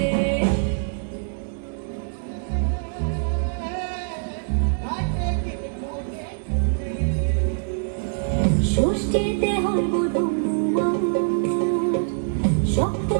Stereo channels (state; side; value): silent; left; digital silence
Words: ষষ্ঠীতে হয় বধূ